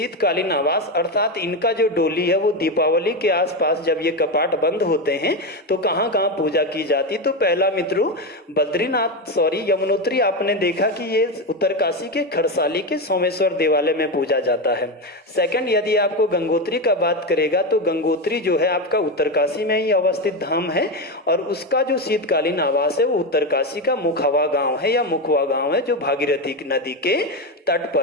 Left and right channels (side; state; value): both; normal; correlation 0.13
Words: आवास, अर्थात इनका जो डोली है वो दीपावली के आसपास जब ये कपाट बंद होते हैं तो कहाँ कहाँ पूजा की जाती है? तो पहला मित्रों यमुनोत्री आपने देखा कि ये उत्तरकाशी के खरसाली के सोमेश्वर देवालय में पूजा जाता है। सेकंड, यदि आपको गंगोत्री का बात करेगा तो गंगोत्री जो है आपका उत्तरकाशी में ही अवस्थित धाम है और उसका जो शीतकालीन आवास है वो उत्तरकाशी का मुखवा गांव है, मुखवा गांव है, जो भागीरथी नदी के तट